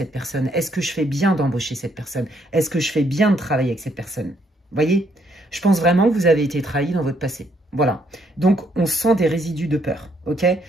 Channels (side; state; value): both; normal; correlation 0.71